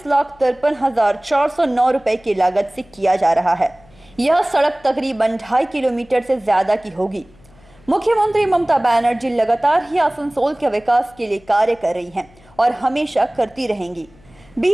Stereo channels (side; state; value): left; noise; hum, 28 dB below the sound